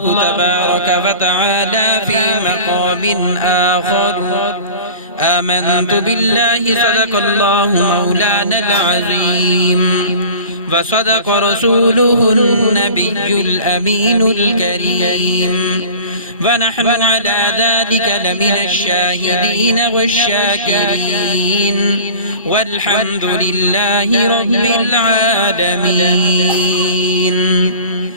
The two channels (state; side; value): inverted; both; correlation -0.40